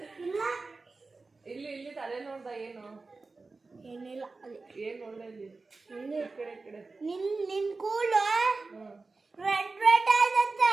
ಇಲ್ಲಿ ತಲೆ ನೋಡ್ದ? ಏನು ಏನಿಲ್ಲ. ಏನ್ ನೋಡ್ದ ಇಲ್ಲಿ? ಕಡೆ ನಿನ್ ಕೂಲು ರೆಡ್ ರೆಡ್ ಆಯ್ತಂತೆ.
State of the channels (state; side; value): quieter; left; 3.8 dB